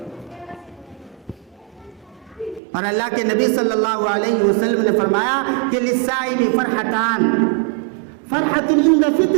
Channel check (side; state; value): left; drops out; at 2.6 s